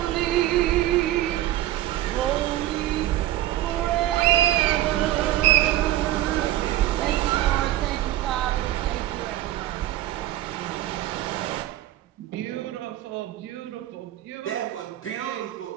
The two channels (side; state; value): left; quieter; 14.3 dB